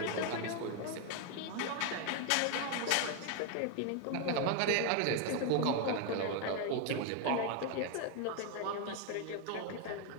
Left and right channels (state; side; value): different; both; correlation 0.01